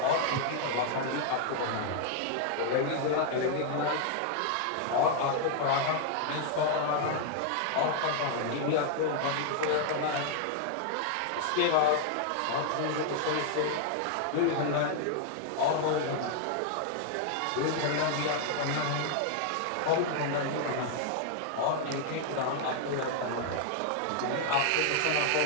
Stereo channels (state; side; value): different; both; correlation 0.00